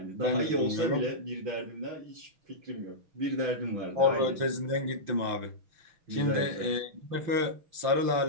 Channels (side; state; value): left; late; 5.9 ms